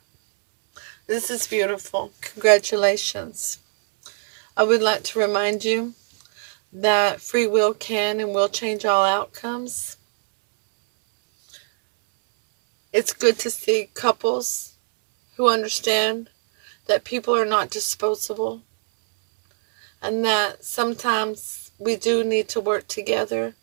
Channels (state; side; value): silent; left; digital silence